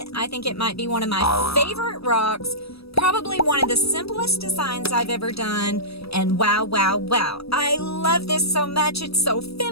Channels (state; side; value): late; right; 0.77 ms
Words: I think it might be one of my favorite rocks. Probably one of the simplest designs I've ever done. And wow, wow, wow. I love this so much. It's so